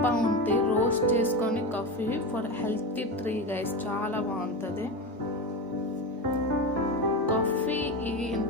pound రోస్ట్ చేసుకొని coffee for healthy tree guys, చాలా బాగుంటుంది. కాఫీ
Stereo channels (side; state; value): both; normal; correlation 0.20